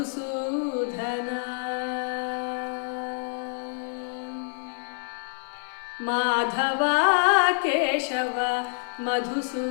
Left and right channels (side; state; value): right; silent; 55 dB below the other